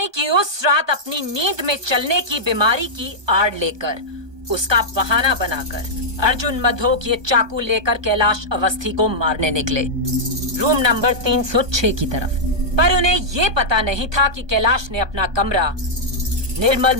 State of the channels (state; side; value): late; left; 1.2 ms